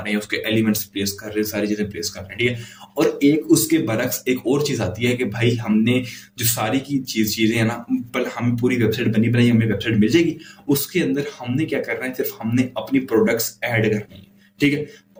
हैं, उसके एलिमेंट्स प्लेस कर रहे हैं, सारी चीजें प्लेस कर रहे हैं, ठीक है। और एक उसके बरक्स एक और चीज आती है कि भाई हमने जो सारी की चीजें है ना, पर हमें पूरी वेबसाइट बनी बनाई हमें वेबसाइट मिल जाएगी, उसके अंदर हमने क्या करना है, सिर्फ हमने अपनी प्रोडक्ट्स ऐड करनी है, ठीक है।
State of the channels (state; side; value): identical; both; correlation 1.00